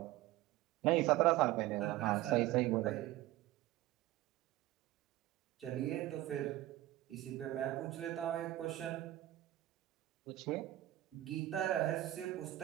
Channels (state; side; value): quieter; left; 15.7 dB